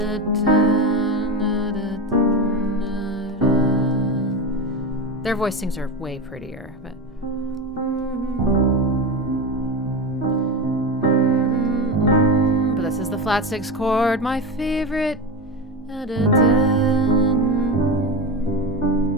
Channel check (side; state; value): both; normal; correlation 0.19